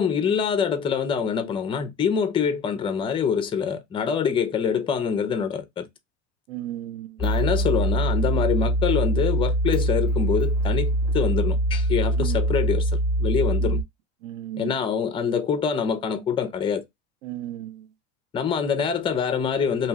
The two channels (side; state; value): right; quieter; 3.1 dB